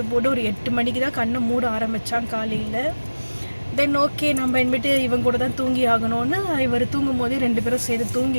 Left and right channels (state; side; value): inverted; both; correlation -1.00